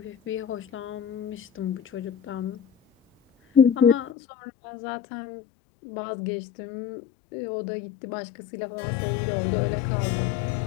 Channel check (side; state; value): right; drops out; at 4.1 s